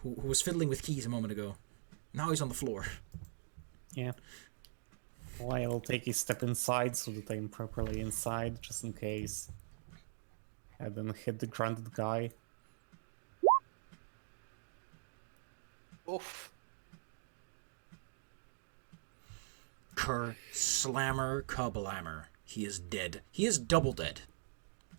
who was fiddling with keys a moment ago. Now he's on the floor. Yeah. Well, I'll take a step inside so that I'm properly inside, just in case. And then hit the grounded guy. Oof. Kerr slammer kablammer. He is dead. He is double dead.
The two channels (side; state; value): left; silent; digital silence